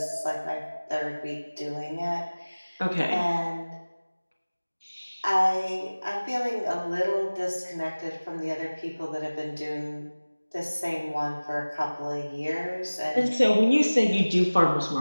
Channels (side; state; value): both; inverted; correlation -1.00